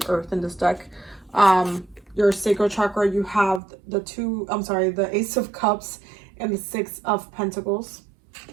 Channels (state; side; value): drops out; left; at 3.6 s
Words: Earth in this deck. Your Sacral Chakra, you have the Ace of Cups and the Six of Pentacles.